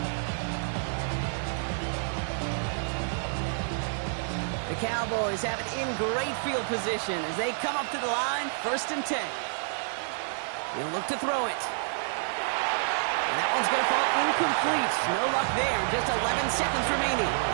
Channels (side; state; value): left; silent; digital silence